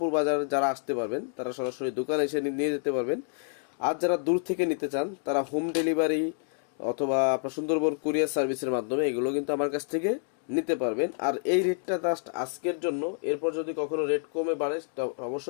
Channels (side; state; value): right; silent; 59 dB below the other